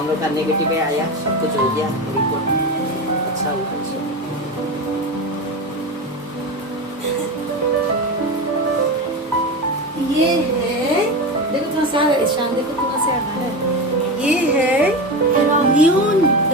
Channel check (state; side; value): normal; both; correlation 0.21